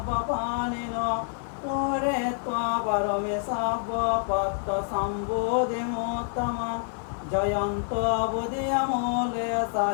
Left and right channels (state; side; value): silent; right; digital silence